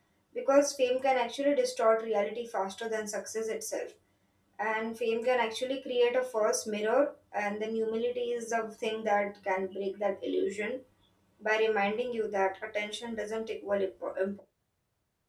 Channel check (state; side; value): identical; both; correlation 1.00